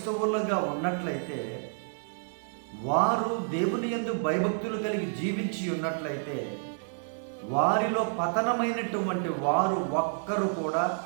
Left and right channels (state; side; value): silent; left; 58 dB below the other